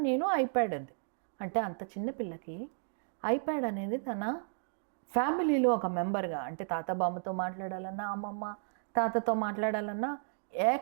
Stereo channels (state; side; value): silent; left; digital silence